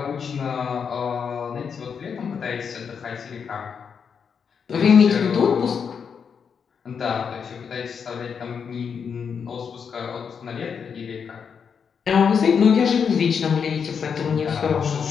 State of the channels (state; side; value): quieter; right; 6.6 dB